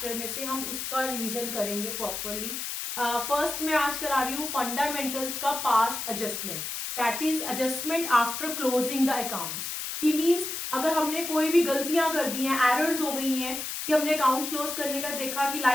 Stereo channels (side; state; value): left; noise; hiss, 5 dB below the sound